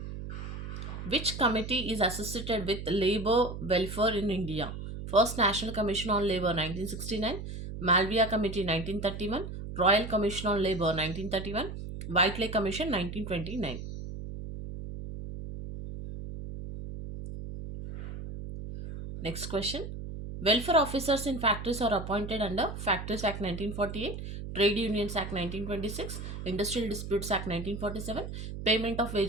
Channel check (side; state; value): right; noise; hum, 8 dB below the sound